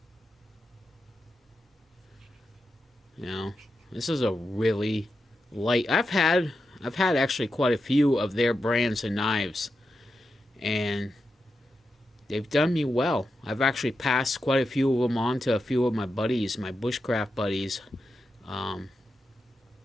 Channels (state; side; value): normal; both; correlation 0.88